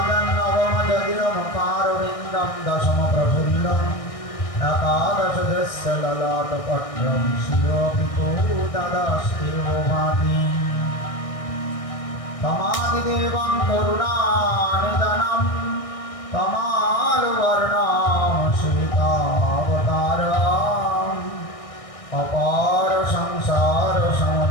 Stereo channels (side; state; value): right; late; 1.6 ms